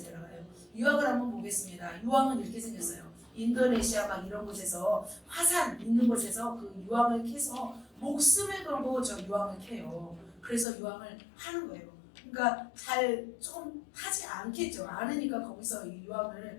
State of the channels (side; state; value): right; drops out; at 10.7 s